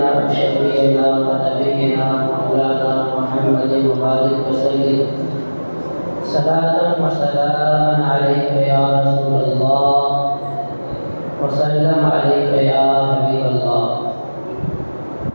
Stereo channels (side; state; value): both; inverted; correlation -1.00